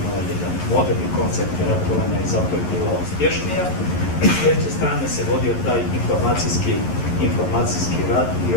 jedan moderni koncept ratovanja i zato je bila uspješnija. S treće strane se vodio taj informacijski rat i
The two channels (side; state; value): right; late; 11 ms